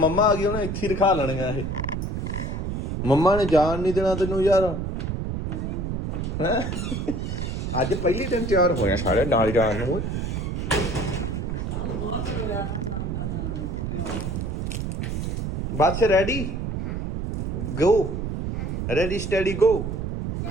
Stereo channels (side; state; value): right; noise; rumble, 3 dB below the sound